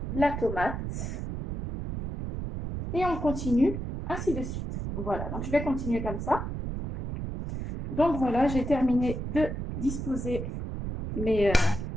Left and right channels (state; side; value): noise; right; rumble, 5 dB below the sound